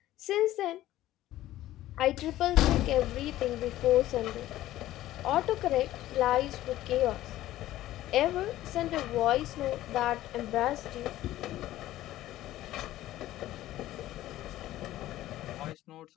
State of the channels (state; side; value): quieter; right; 14.7 dB